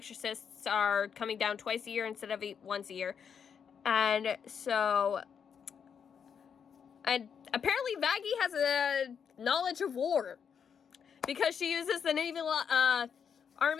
are coming down twice a year instead of once a year. And so, and apparently Vaggie has a knowledge of war, because she uses the Navy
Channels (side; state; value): right; quieter; 7.2 dB